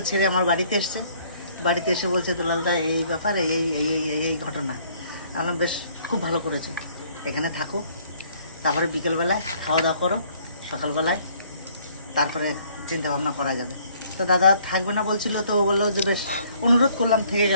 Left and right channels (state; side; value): inverted; both; correlation -0.61